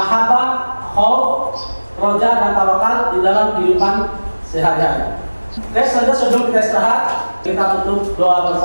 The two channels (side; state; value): both; inverted; correlation -1.00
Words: khauf, raja, dan tawakal di dalam kehidupan sehari-hari. Oke, sebelum kita istirahat, kita tutup doa